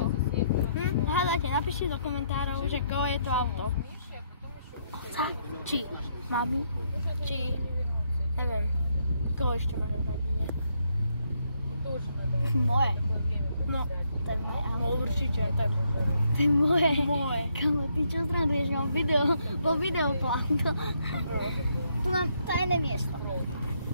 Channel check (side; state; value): both; inverted; correlation -0.73